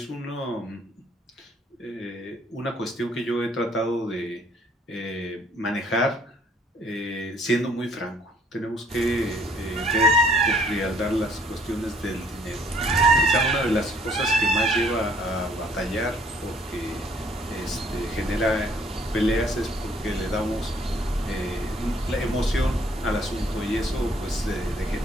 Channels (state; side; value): normal; both; correlation 0.61